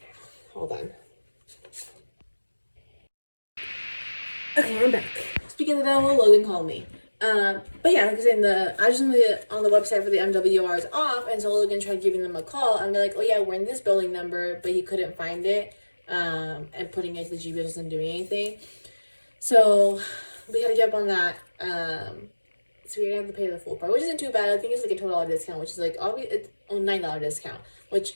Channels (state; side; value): inverted; both; correlation -1.00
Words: Hold on. Okay, I'm back. Speaking of the devil, Logan called me. But yeah, like I was saying, the address on the website for the MWR is off, and so Logan tried giving them a call, and they're like, oh yeah, we're in this building number, but he couldn't find it, and putting it to the GPS wasn't doing anything. So we had to get up on that, So we're gonna have to pay the full price, which isn't too bad. I think it's like a $12 discount, which is like it's a $9 discount, which